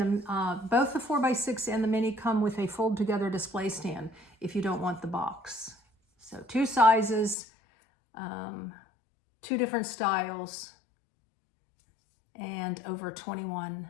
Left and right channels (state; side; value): drops out; right; at 7.4 s